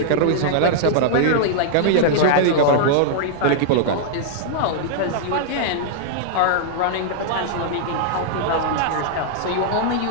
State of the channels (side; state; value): both; different; correlation -0.01